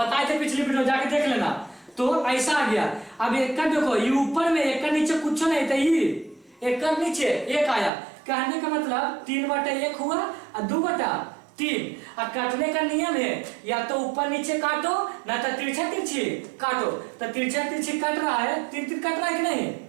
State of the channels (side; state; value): left; drops out; at 7.9 s